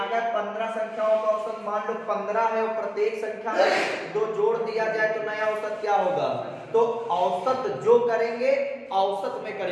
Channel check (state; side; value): identical; both; correlation 1.00